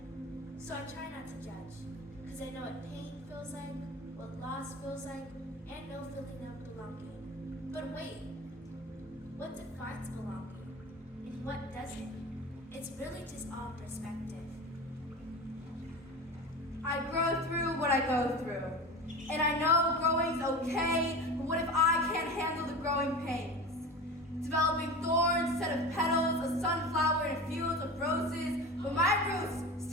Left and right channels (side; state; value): both; normal; correlation 0.31